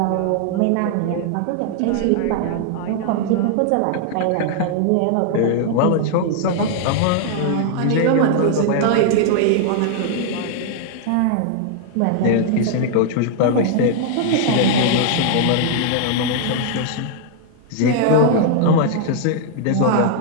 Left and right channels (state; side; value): different; both; correlation 0.00